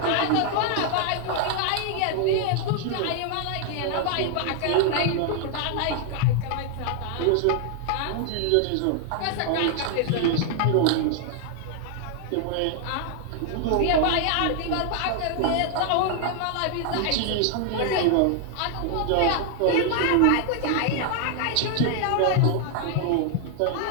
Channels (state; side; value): different; both; correlation 0.00